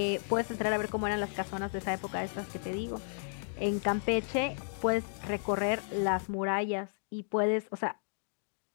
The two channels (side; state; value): right; silent; digital silence